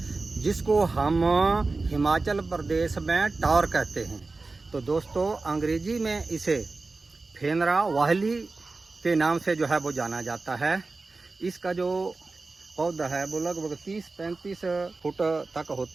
जिसको हम हिमाचल प्रदेश में टॉर कहते हैं। तो दोस्तों, अंग्रेजी में इसे फेनरा वाहली के नाम से जो है वो जाना जाता है। इसका जो पौधा है वो लगभग 30-35 फुट तक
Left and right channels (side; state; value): left; quieter; 3.7 dB